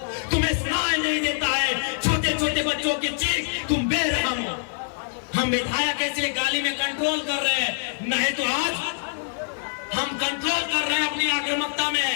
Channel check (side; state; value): right; silent; digital silence